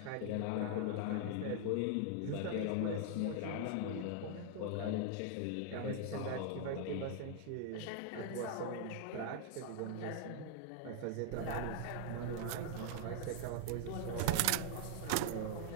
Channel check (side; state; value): both; different; correlation 0.00